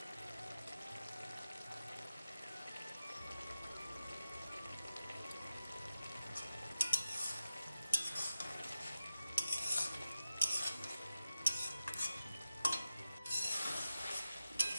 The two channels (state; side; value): inverted; both; correlation -0.93